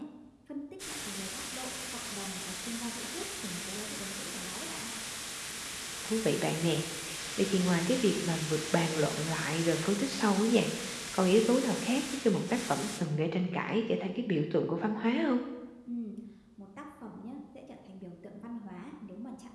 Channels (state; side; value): identical; both; correlation 1.00